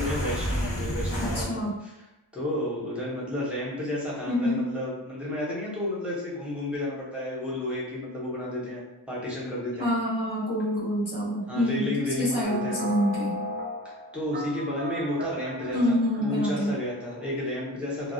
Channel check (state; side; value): normal; both; correlation 0.40